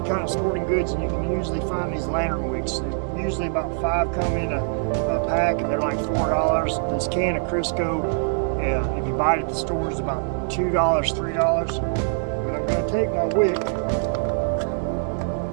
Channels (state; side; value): silent; left; 63 dB below the other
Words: kind of sporting goods, and you can usually find these lantern wicks. usually about 5 come in a pack, and they're like $4. This can of Crisco, if you buy it at the store, is about $2, $3. But I'm going to take my wick,